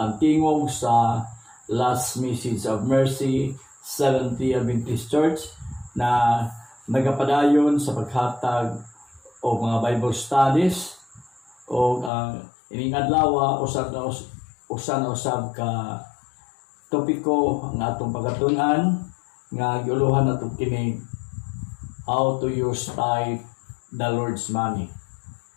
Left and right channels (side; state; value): right; drops out; at 12.1 s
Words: tingog sa Last Message of Mercy Seventh-day Adventist Church na nagapadayon sa paghatag o mga Bible studies o ining adlaw usab ka topiko ang atong pagatunan nga giuluhan nato kini how to use tithe the Lord's money.